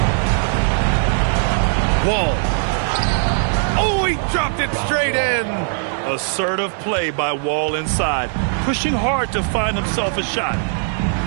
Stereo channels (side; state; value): left; silent; 66 dB below the other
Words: Wall. Oh, he dropped it straight in. Assertive play by Wall inside, pushing hard to find himself a shot.